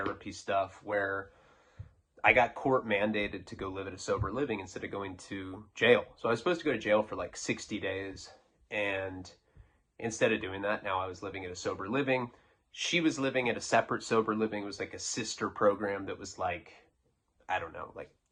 stuff where I got court mandated to go live at a sober living instead of going to jail. So I was supposed to go to jail for like 60 days. And instead of doing that, now I was living at a sober living. She was living at a separate sober living. It was like a sister program that was like, I don't know, like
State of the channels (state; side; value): identical; both; correlation 1.00